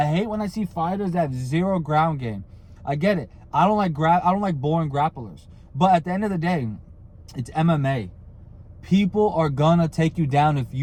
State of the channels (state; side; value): identical; both; correlation 1.00